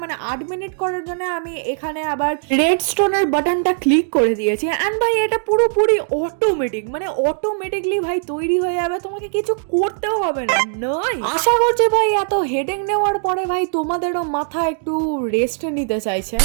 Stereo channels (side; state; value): left; silent; digital silence